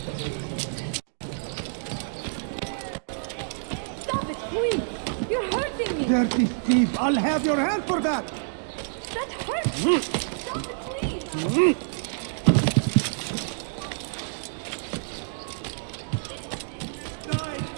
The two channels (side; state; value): left; silent; digital silence